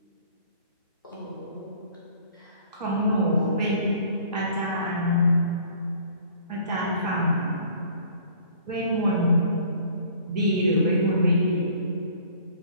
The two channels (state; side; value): inverted; both; correlation -0.52